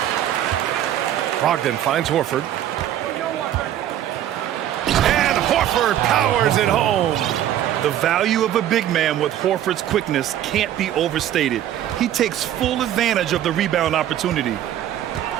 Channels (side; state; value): left; quieter; 11.6 dB